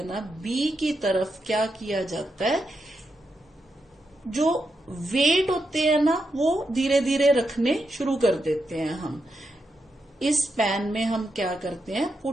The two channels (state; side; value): normal; both; correlation 0.84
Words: ना, बी की तरफ क्या किया जाता है, जो वेट होते हैं ना वो धीरे धीरे रखने शुरू कर देते हैं हम। इस पैन में हम क्या करते हैं,